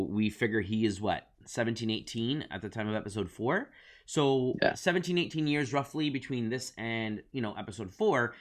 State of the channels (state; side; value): identical; both; correlation 1.00